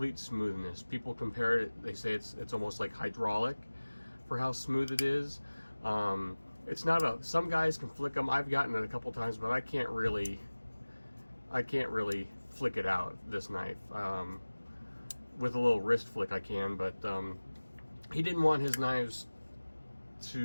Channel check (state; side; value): inverted; both; correlation -1.00